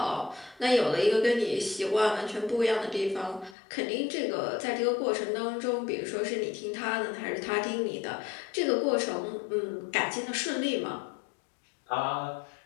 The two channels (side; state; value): right; drops out; at 3.6 s